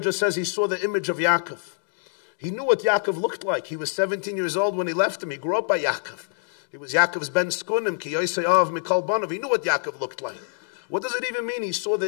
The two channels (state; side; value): silent; right; digital silence